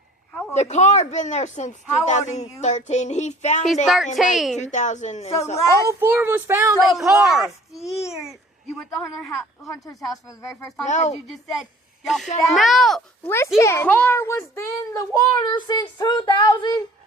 The car been there since How old are you? 2013. He found He's it 13. in like 2000 and So something. last- All 4 of us found So a car. last year, you went to Hunter's house for the very first time No. because you just said y'all found. no. The Listen. car was in the water since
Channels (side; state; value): both; normal; correlation 0.50